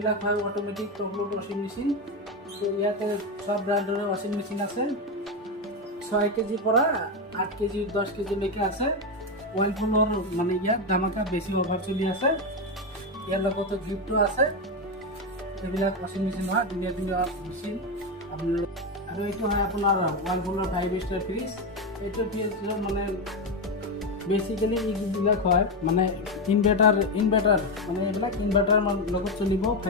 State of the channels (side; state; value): both; normal; correlation 0.10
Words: হয় অট'মেটিক টপ লোড ৱাশ্বিং মেচিন। তো ইয়াতে সব ব্ৰাণ্ডৰে ৱাশ্বিং মেচিন আছে। 6 কেজিৰ পৰা 8 কেজি 10 কেজিলৈকে আছে। ৱাইলপুলৰ মানে ইয়াত ধামাকা বেছি অফাৰ চলি আছে। ইয়াৰ লগতে গিফ্টটো আছে। এইবিলাক ৱাশ্বিং মেচিন হয়, ধুনীয়া ধুনীয়া মেচিন আপোনাৰ। আৰু এইটো হয় আপোনাৰ ৱাইলপুলৰ 5 ষ্টাৰ ফ্ৰিজ। এইটো ফ্ৰিজৰ মানে বেচিকেলি এইবিলাক হয় মানে ইনভাৰ্টাৰ মানে এইবিলাক ইনভাৰ্টাৰ লগত চলিব